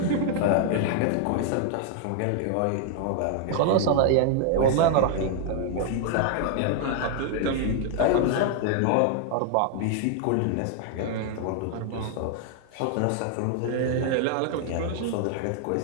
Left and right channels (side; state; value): both; different; correlation 0.00